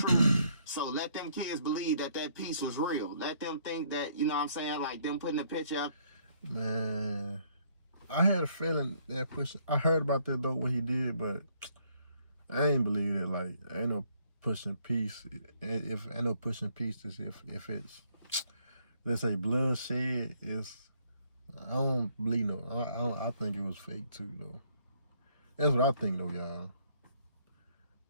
So let them kids believe that peace was real. Let them think that, you know what I'm saying, like them putting a picture up. Man, I had a feeling that I heard about that though, what he did, but I ain't believe it. Like, ain't no pushing peace. If ain't no pushing peace, if it's, let's say, bloodshed, I don't believe no. I think it was fake too though. That's what I think though, y'all.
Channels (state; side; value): inverted; both; correlation -0.67